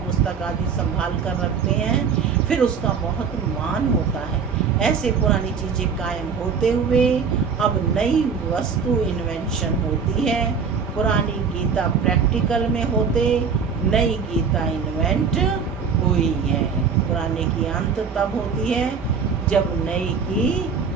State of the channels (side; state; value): left; quieter; 6.0 dB